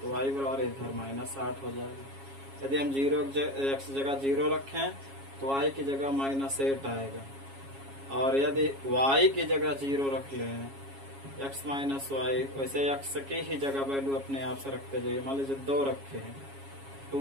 y बराबर इधर -8 हो जाएगा। यदि हम 0 x जगह 0 रखें तो y की जगह -8 आएगा। और यदि y की जगह 0 रख लें, x माइनस वाई, वैसे x की ही जगह वैल्यू अपने आप से रखते जाइए। मान लीजिए 2 रखे हैं,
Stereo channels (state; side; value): late; left; 7.3 ms